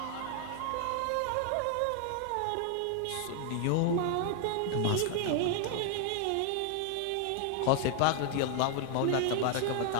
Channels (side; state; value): both; different; correlation 0.00